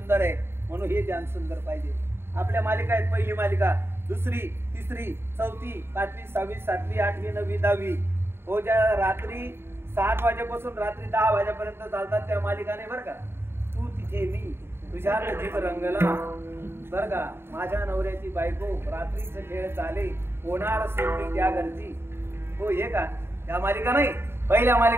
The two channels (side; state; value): left; late; 0.11 ms